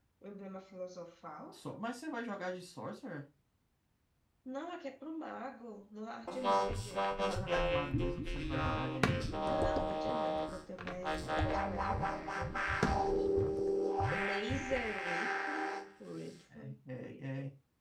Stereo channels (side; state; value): both; identical; correlation 1.00